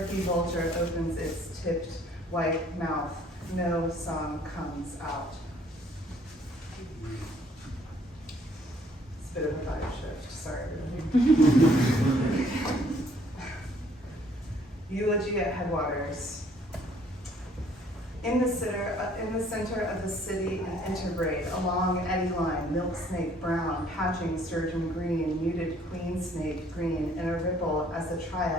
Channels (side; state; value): both; normal; correlation 0.61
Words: vulture opens its tipped white mouth. No song comes out. It's a bit of a vibe shift, sorry everybody. Eulogy at Headwaters. In the center of the city, an interbraid, a long eddy line, milk snake brown, patching sturgeon green, muted queen snake green, in a ripple as the